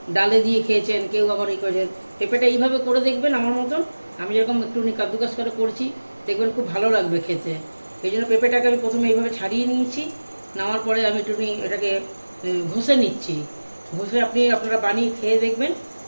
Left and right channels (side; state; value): both; inverted; correlation -1.00